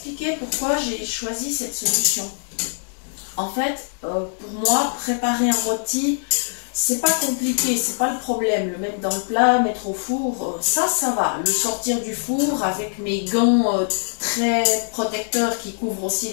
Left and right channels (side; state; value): right; silent; digital silence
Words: pourquoi j'ai choisi cette solution. En fait, pour moi, préparer un rôti, c'est pas compliqué, c'est pas le problème. Le mettre dans le plat, mettre au four, ça va. Le sortir du four avec mes gants très protecteurs qui couvrent aussi